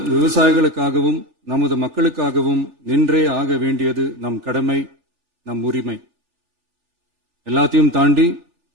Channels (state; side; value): late; left; 3.4 ms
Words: விவசாயிகளுக்காகவும் நமது மக்களுக்காகவும் நின்றே ஆக வேண்டியது நம் கடமை, நம் உரிமை. எல்லாத்தையும் தாண்டி